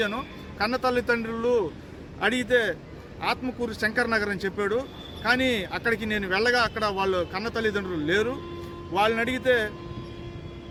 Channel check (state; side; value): identical; both; correlation 1.00